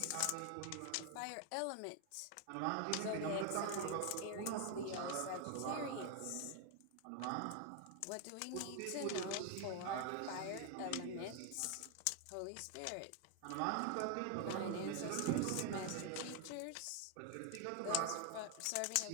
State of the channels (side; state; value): both; different; correlation 0.01